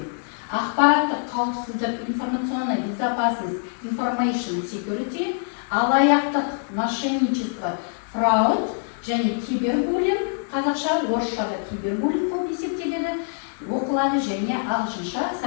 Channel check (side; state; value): right; silent; 62 dB below the other